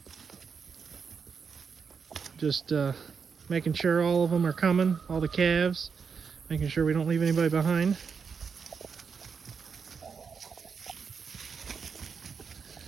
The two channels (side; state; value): left; quieter; 6.0 dB